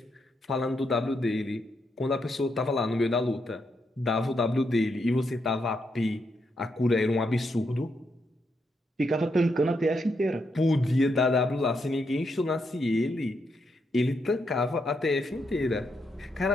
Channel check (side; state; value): both; normal; correlation 0.80